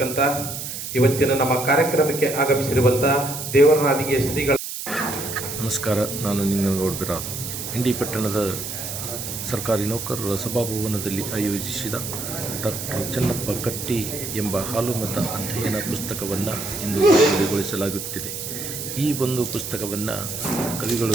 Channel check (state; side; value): noise; right; hiss, 7 dB below the sound